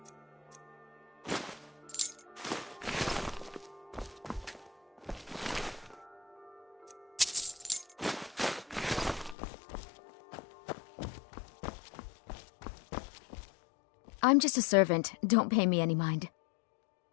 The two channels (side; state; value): right; drops out; at 9.3 s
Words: I'm just a servant. Don't pay me any mind.